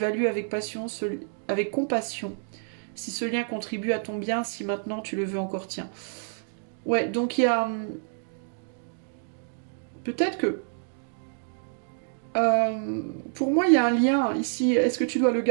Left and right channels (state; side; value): silent; left; digital silence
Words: avec compassion. Si ce lien contribue à ton bien, si maintenant tu le veux encore, tiens. Ouais, donc il y a... Peut-être que... pour moi, il y a un lien ici. Est-ce que tu dois le